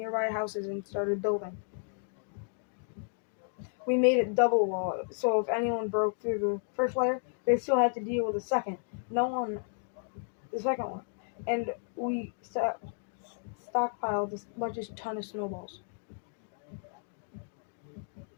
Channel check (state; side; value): silent; right; 56 dB below the other